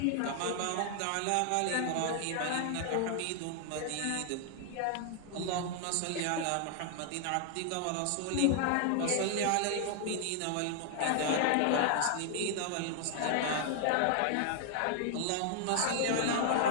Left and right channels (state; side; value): different; both; correlation 0.00